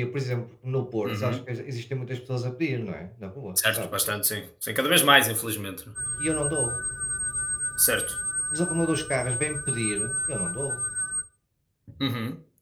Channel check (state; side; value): identical; both; correlation 1.00